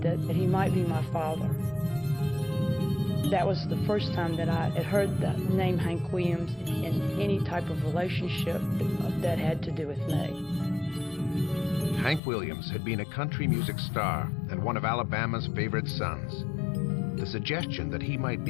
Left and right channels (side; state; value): right; drops out; at 12.2 s